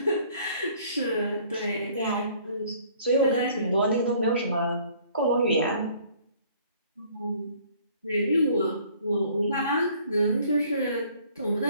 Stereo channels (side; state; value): both; inverted; correlation -0.57